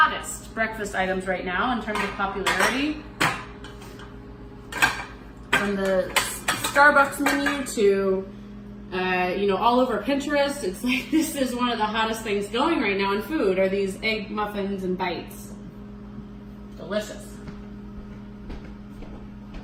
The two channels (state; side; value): identical; both; correlation 1.00